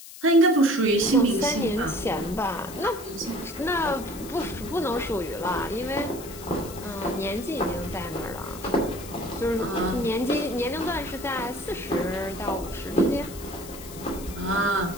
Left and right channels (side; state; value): left; noise; hiss, 15 dB below the sound